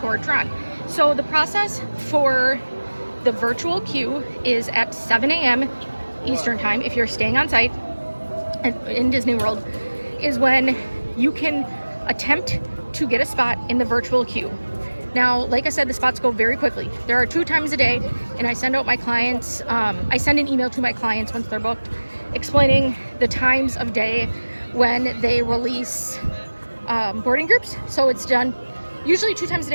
Tron. So the process for the virtual queue is at 7 a.m. Eastern time. If you're staying on site in Disney World, is when you can attempt to get a spot in the virtual queue. Now, like I said, the spots go very quickly. There are 2 times a day, and I send out my clients, I send an email to my clients once they're booked, explaining the times of day when they release boarding groups. So it's done usually 2 times a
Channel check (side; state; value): both; inverted; correlation -1.00